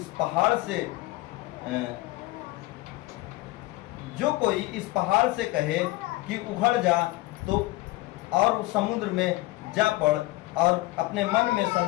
पहाड़ से कहे कि उखड़ जा तो और समुद्र में जा पड़, और अपने मन में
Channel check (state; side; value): quieter; right; 19.3 dB